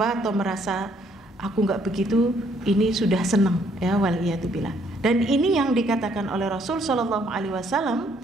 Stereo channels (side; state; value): both; normal; correlation 0.67